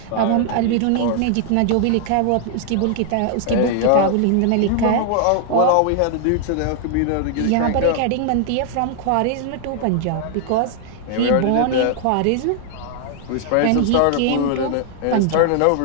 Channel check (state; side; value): different; both; correlation 0.00